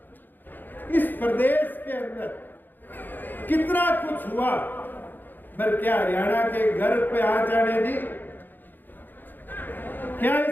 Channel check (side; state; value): right; late; 0.090 ms